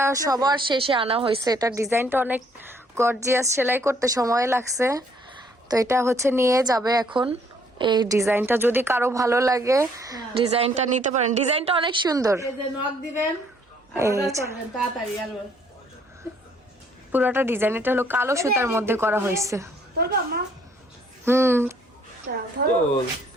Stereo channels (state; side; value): normal; both; correlation 0.64